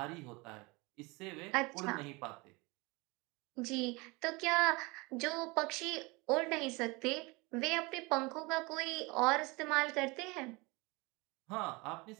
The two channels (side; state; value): left; quieter; 25.7 dB